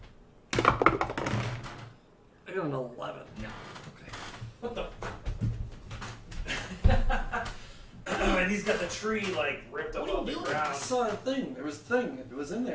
I got an 11. What the? And he's got the tree like ripped up What are you off the doing? I ground. saw a thing. There was a thing. It was in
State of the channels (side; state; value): both; identical; correlation 1.00